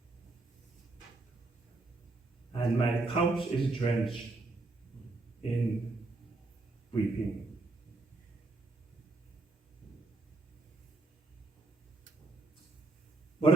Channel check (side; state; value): left; quieter; 3.2 dB